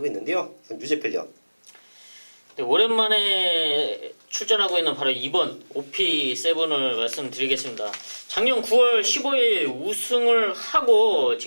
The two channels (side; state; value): both; inverted; correlation -1.00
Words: 있는데요. 유재필요. 네, 오랜만에 출전하고 있는 바로 2번 OP7을 말씀드리겠습니다. 작년 9월 15일 우승을 하고